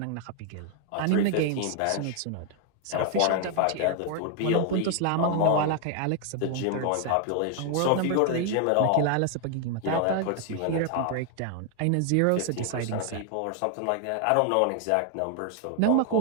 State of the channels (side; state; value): both; different; correlation 0.00